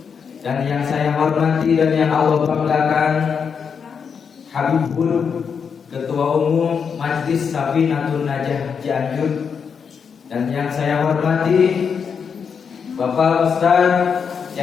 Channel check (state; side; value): quieter; right; 6.4 dB